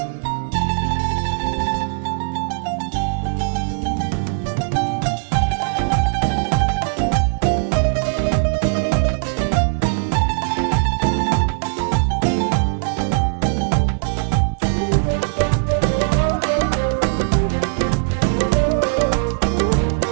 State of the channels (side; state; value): left; silent; digital silence